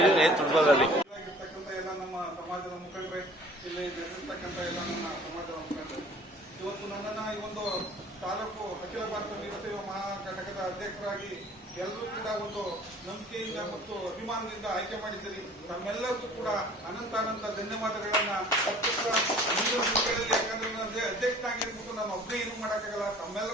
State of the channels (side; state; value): both; normal; correlation 0.50